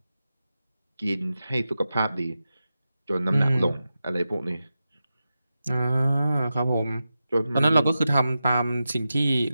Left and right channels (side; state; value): both; inverted; correlation -0.91